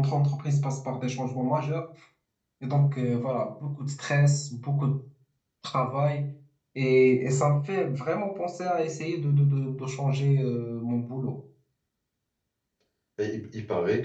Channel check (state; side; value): identical; both; correlation 1.00